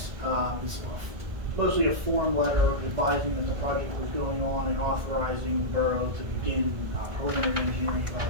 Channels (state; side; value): late; left; 1.7 ms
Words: It's mostly a form letter advising that the project was going on and authorizing the borough to begin preliminary engineering